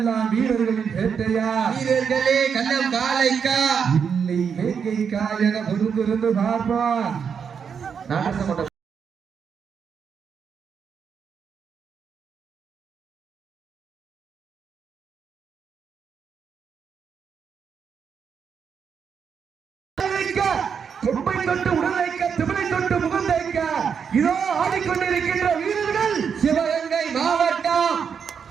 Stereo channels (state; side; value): quieter; left; 6.8 dB